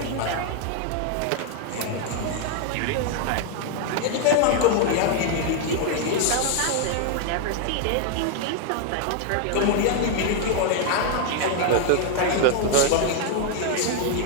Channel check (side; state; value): both; different; correlation 0.00